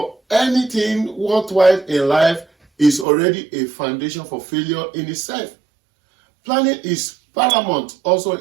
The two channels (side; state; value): left; drops out; at 3.1 s